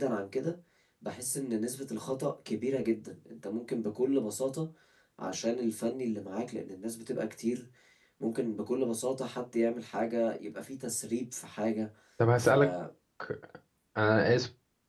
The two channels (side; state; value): both; identical; correlation 1.00